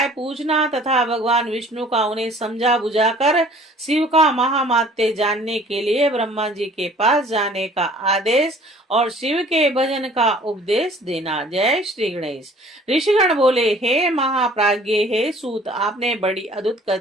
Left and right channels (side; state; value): both; normal; correlation 0.52